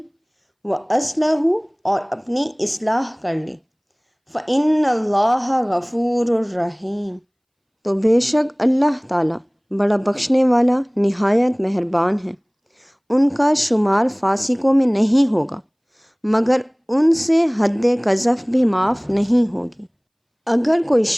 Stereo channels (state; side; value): identical; both; correlation 1.00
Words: وَأَصْلَحُوا، اور اپنی اصلاح کر لی، فَإِنَّ اللَّهَ غَفُورٌ رَحِيمٌ، تو بے شک اللہ تعالیٰ بڑا بخشنے والا نہایت مہربان ہے۔ ان کا شمار فاسقوں میں نہیں ہوگا، مگر ان سے حد قذف بھی معاف نہیں ہوگی۔ اگر کوئی